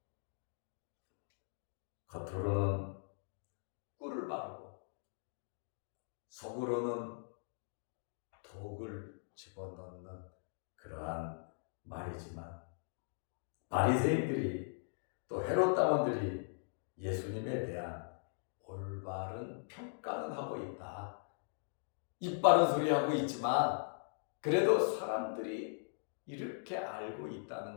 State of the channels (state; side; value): silent; right; digital silence